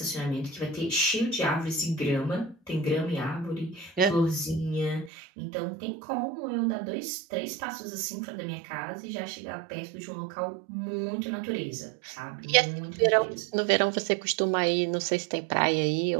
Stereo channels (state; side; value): drops out; left; at 5.1 s